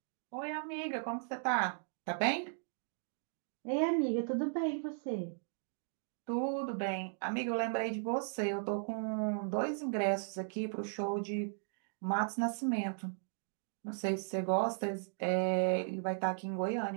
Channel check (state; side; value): silent; left; digital silence